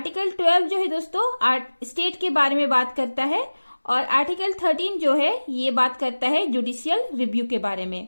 12 जो है दोस्तों स्टेट के बारे में बात करता है और आर्टिकल 13 जो है ये बात करता है जुडिशियल रिव्यू के बारे में।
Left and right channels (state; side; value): inverted; both; correlation -1.00